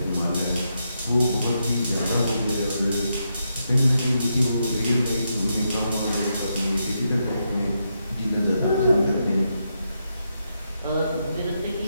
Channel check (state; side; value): inverted; both; correlation -0.82